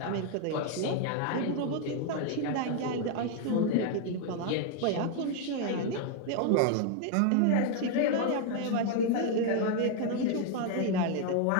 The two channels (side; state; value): both; different; correlation 0.00